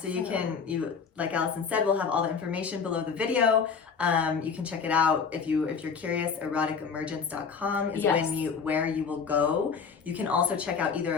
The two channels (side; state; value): right; quieter; 5.9 dB